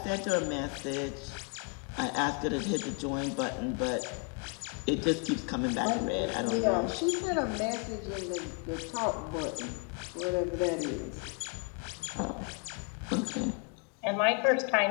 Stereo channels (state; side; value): quieter; right; 35.4 dB